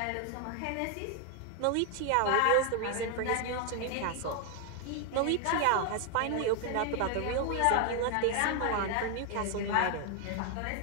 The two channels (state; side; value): different; both; correlation 0.00